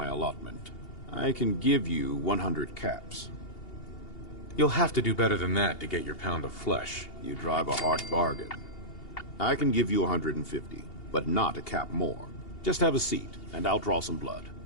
allotment. I can give you 100 caps. You'll have to do better than that to get your pound of flesh. You drive a hard bargain. I can give you 150, but not a cap more. Just have a seat, and I'll draw some blood.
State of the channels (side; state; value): right; late; 2.8 ms